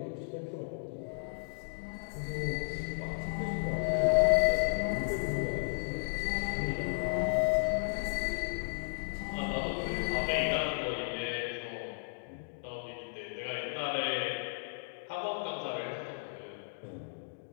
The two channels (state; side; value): silent; right; digital silence